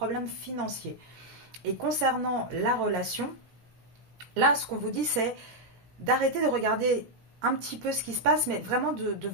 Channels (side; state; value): left; late; 17 ms